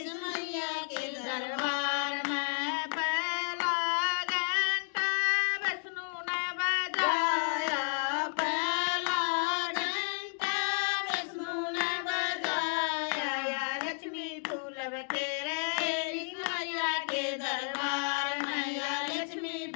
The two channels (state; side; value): silent; right; 56 dB below the other